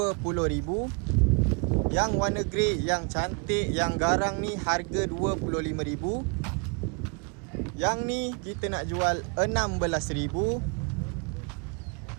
Yang warna grey, yang cantik, yang garang ni harga 25,000. Yang ni kita nak jual 16,000.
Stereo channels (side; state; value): left; quieter; 35.0 dB